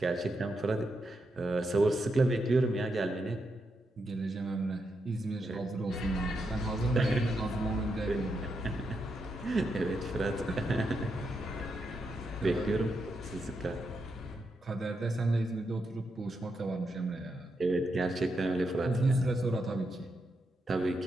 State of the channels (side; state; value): both; normal; correlation 0.83